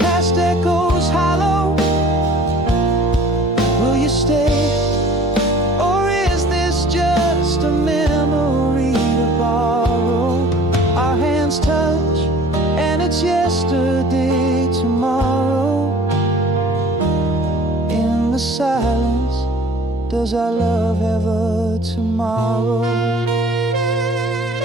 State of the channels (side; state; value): both; normal; correlation 0.49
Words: echoes hollow, will you stay, or is this just a memory to borrow? Our hands touch and it's yesterday tomorrow. In the silence, does our love ever tomorrow?